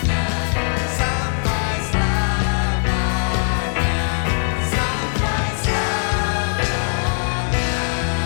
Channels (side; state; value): right; silent; digital silence